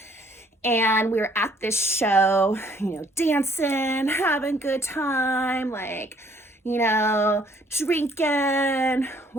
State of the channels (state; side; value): normal; both; correlation 0.62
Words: And we were at this show, dancing, having a good time, drinking.